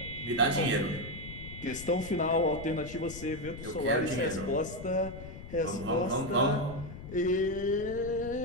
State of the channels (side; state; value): left; noise; rumble, 12 dB below the sound